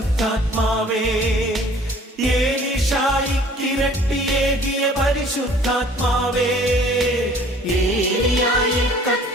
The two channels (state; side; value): normal; both; correlation 0.52